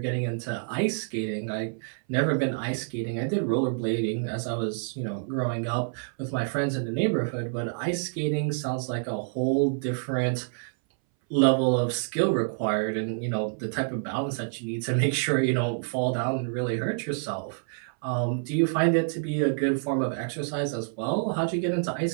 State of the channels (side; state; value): left; silent; 60 dB below the other